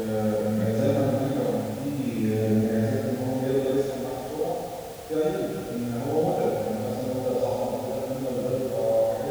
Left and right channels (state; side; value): identical; both; correlation 1.00